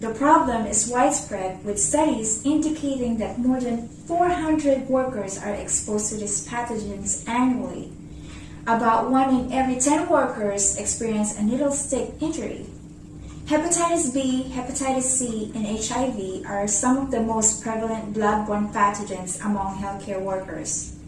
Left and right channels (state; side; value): identical; both; correlation 1.00